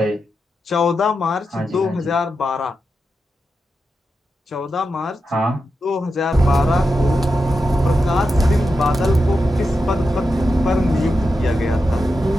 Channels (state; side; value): normal; both; correlation 0.88